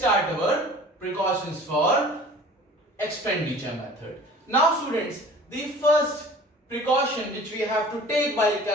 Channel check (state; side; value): normal; both; correlation 0.45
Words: our precautions for expenditure method. Now students, the first precaution which we have to take while